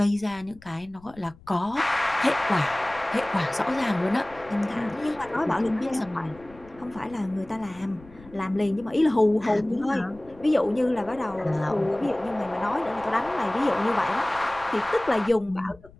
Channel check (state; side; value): noise; left; rumble, 23 dB below the sound